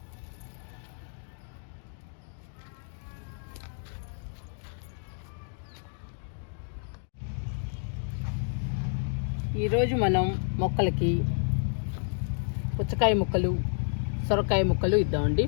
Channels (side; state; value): right; silent; digital silence